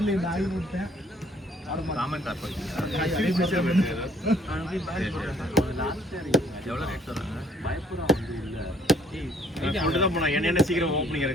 இந்த ஆகி போட்டேன் என்ன சீக்கிரம் ஓப்பனிங்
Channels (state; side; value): normal; both; correlation 0.61